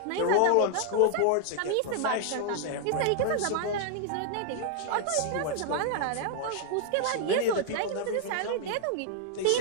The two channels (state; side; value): different; both; correlation -0.01